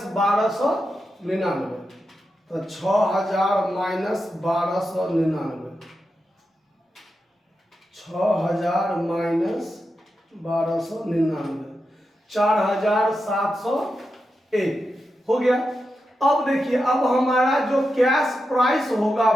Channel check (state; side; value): normal; both; correlation 0.88